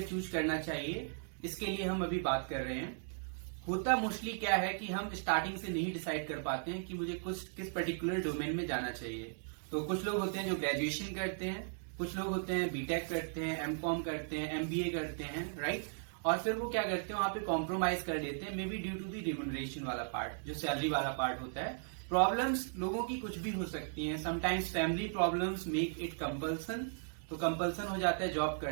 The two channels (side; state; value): left; silent; digital silence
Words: चूज करना चाहिए, इसके लिए हम अभी बात कर रहे हैं। होता मोस्टली क्या है कि हम स्टार्टिंग से नहीं डिसाइड कर पाते हैं कि मुझे किस पर्टिकुलर डोमेन में जाना चाहिए। तो कुछ लोग होते हैं जो ग्रेजुएशन करते हैं, कुछ लोग होते हैं बीटेक करते हैं, एमकॉम करते हैं, एमबीए करते हैं, राइट। और फिर वो क्या करते हैं, वहां पे कॉम्प्रोमाइज कर देते हैं, may be due to the remuneration वाला पार्ट, जो सैलरी वाला पार्ट होता है। प्रॉब्लम्स लोगों की कुछ भी हो सकती हैं। Sometimes family problems make it compulsion, तो कंपल्सन हो जाता है जॉब